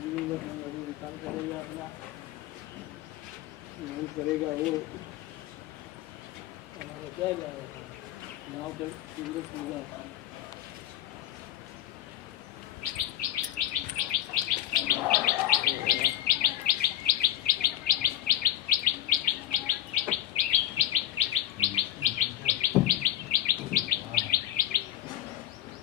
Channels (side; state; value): right; quieter; 12.4 dB